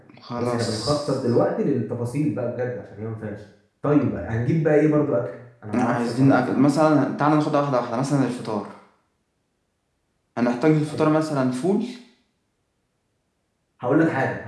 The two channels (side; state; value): both; identical; correlation 1.00